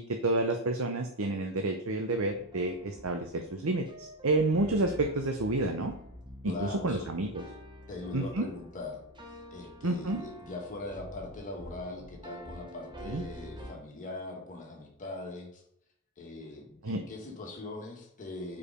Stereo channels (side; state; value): both; normal; correlation 0.10